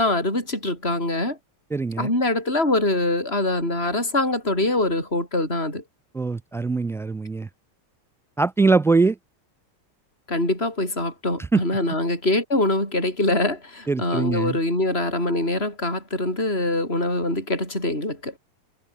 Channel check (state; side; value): late; right; 3.0 ms